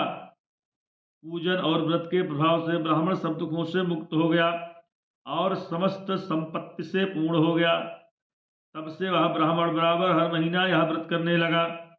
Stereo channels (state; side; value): identical; both; correlation 1.00